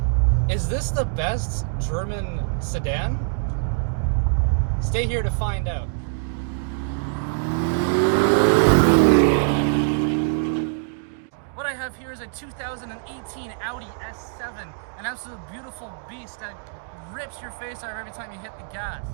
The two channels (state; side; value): silent; left; digital silence